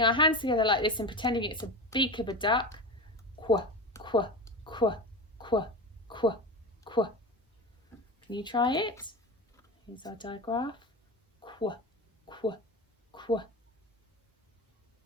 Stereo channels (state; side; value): normal; both; correlation 0.25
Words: our hands together like this and pretending it's a beak of a duck. Qu, qu, qu, qu, qu, qu. Can you try it? Here's our digraph. Qu, qu, qu.